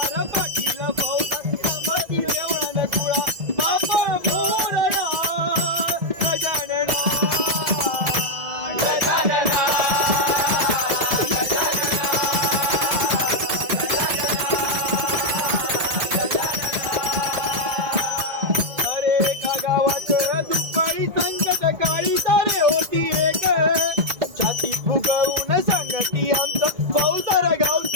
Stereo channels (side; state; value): left; late; 2.0 ms